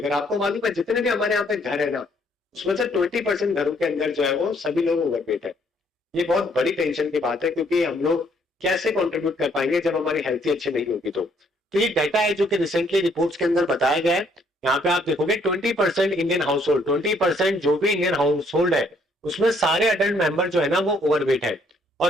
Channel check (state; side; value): normal; both; correlation 0.67